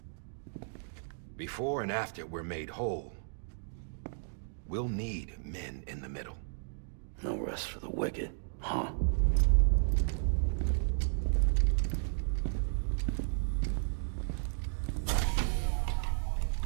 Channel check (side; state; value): left; silent; digital silence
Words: Before and after we're made whole, we'll need men in the middle. No rest for the wicked, huh?